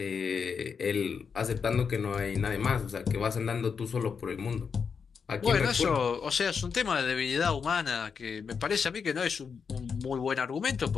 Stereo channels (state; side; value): quieter; right; 6.1 dB